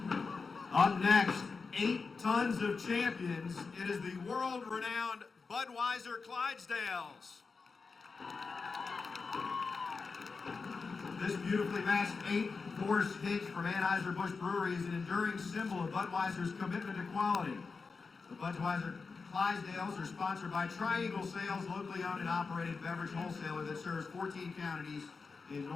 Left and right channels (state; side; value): quieter; right; 4.6 dB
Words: Up next, 8 tons of champions. It is the world-renowned Budweiser Clydesdales. This beautifully matched 8-horse hitch from Anheuser-Busch Brewery is an enduring symbol of Budweiser's commitment to quality. The Budweiser Clydesdales are sponsored by Triangle Sales, locally owned and operated beverage wholesaler that serves 14 counties in